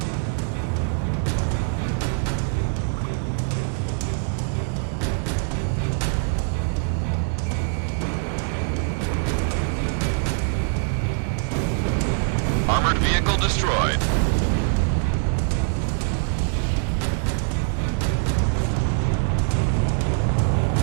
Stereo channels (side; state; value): left; silent; 63 dB below the other